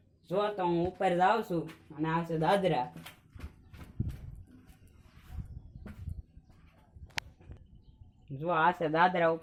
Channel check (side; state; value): both; identical; correlation 1.00